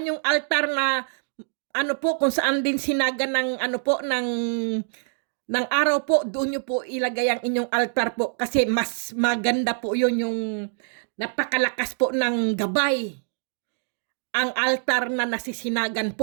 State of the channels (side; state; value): left; silent; digital silence